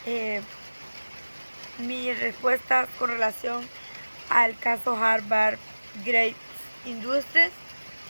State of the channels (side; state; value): both; inverted; correlation -1.00